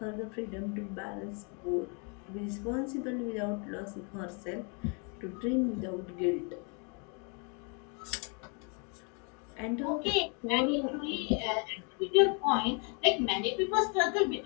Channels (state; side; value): quieter; right; 36.4 dB